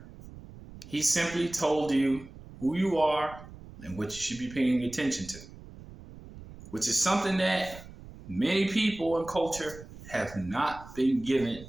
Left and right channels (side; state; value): right; noise; rumble, 17 dB below the sound